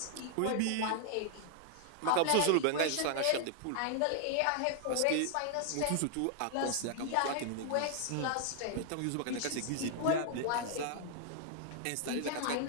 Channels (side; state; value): both; different; correlation 0.00